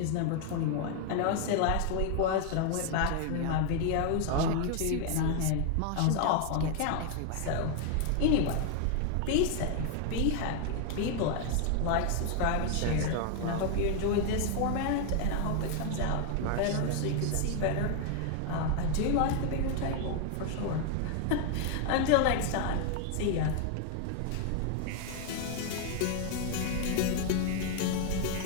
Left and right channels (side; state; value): both; different; correlation 0.00